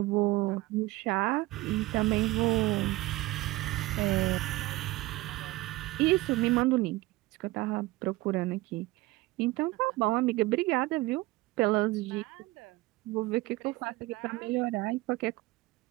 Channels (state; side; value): quieter; left; 19.7 dB